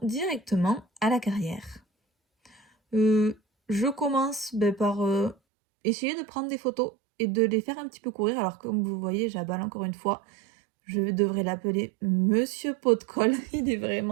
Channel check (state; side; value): drops out; left; at 5.4 s